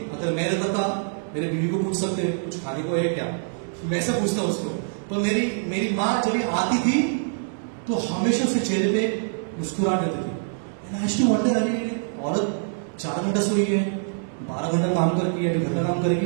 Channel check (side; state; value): left; silent; digital silence